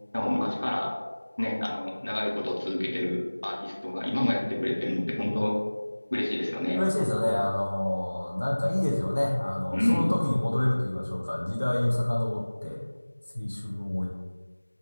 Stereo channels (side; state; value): both; inverted; correlation -1.00